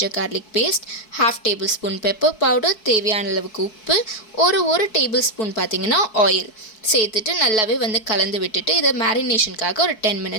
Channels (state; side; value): late; right; 4.6 ms